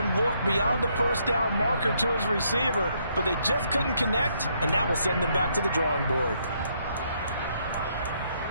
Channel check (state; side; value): inverted; both; correlation -0.72